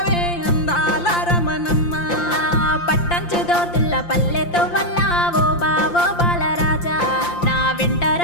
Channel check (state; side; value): late; right; 5.8 ms